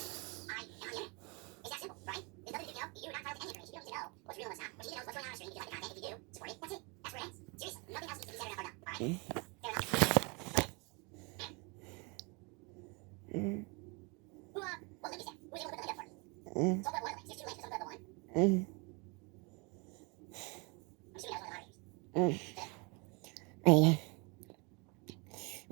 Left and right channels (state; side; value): quieter; left; 30.5 dB